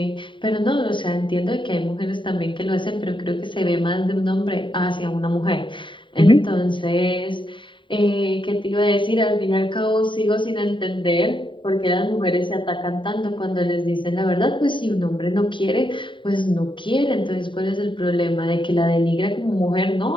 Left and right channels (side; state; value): right; late; 0.24 ms